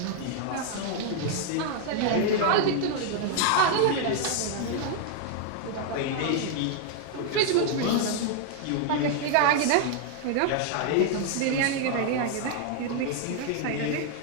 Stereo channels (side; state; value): both; different; correlation 0.00